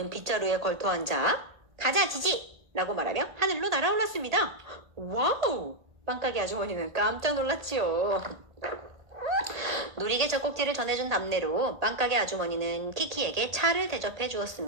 빗자루에 걸터 앉아 가자 지지! 라고 말하며 하늘로 날아올랐습니다. 와우! 빵가게 아주머니는 깜짝 놀랐지요. 놀이개 젖꼭지를 전해준 답례로 빵가게 아주머니는 키키에게 차를 대접해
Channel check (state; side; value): late; left; 1.8 ms